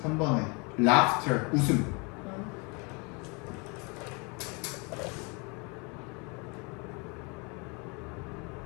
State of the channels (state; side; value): quieter; right; 30.9 dB